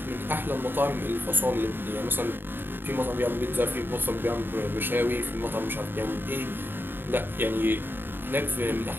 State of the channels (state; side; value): late; left; 0.097 ms